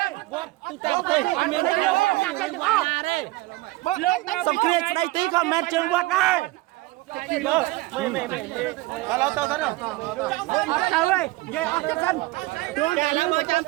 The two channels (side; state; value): left; quieter; 20.3 dB